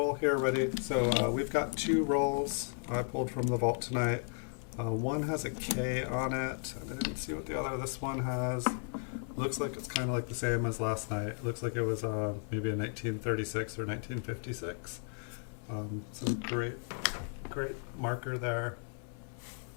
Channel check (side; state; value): right; silent; 55 dB below the other